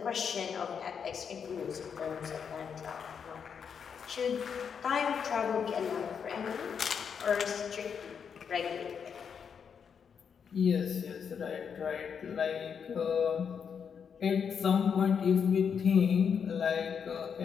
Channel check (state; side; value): quieter; right; 6.9 dB